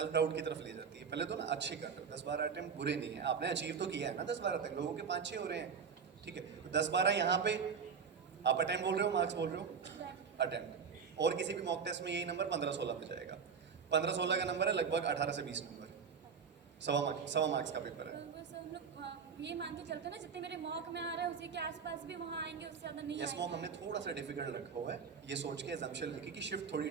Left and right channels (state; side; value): quieter; left; 6.3 dB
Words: डाउट की तरफ ले जाती है। पहले तो ना अच्छे कर रहे हो, 10-12 अटेम्प्ट बुरे नहीं है, आपने अचीव तो किया है ना 10-12 तक। लोगों के 5-6 हो रहे हैं, ठीक है। 10-12 यहाँ पे आप अटेम्प्ट बोल रहे हो, मार्क्स बोल रहे हो, अटेम्प्ट। और किसी भी मॉक टेस्ट में यही नंबर 15-16 पे जाएगा। 15-16 का नंबर है लगभग 18 से 20 नंबर, सवा मार्क्स का पेपर है। तो बस हम लोग ये मान के चलते हैं ना, जितने मेरे मॉक में आ रहे हैं उसी के आसपास भी वहाँ आएंगे, उससे ज़्यादा नहीं यस मॉम आएंगे। हमने थोड़ा सा डिफिकल्ट रखा हुआ है, ये सोच के एग्जाम्पशन लिखी कि शिफ्ट थोड़ी